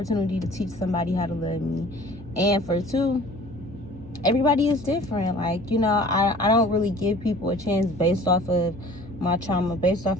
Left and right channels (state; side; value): normal; both; correlation 0.47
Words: to teach somebody how to love me. And for two, everybody is different. Like, you know, I don't really give people a chance based off of my trauma, based off